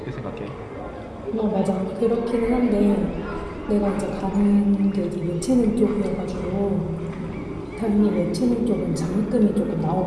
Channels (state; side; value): identical; both; correlation 1.00